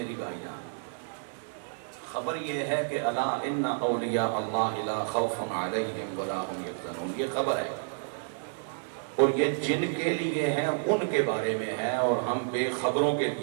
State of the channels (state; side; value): silent; left; 58 dB below the other